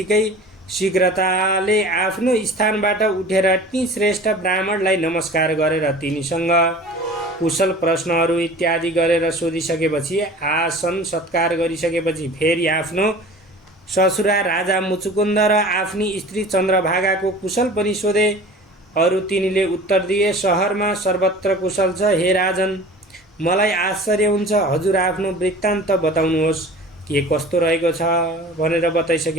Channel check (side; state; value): both; normal; correlation 0.41